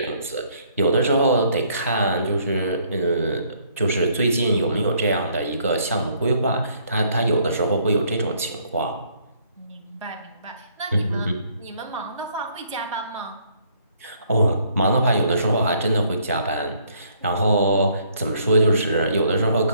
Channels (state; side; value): inverted; both; correlation -0.66